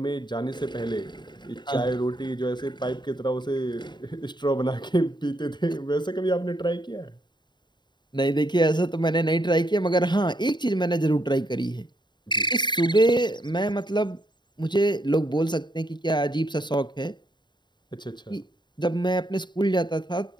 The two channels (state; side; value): late; right; 0.22 ms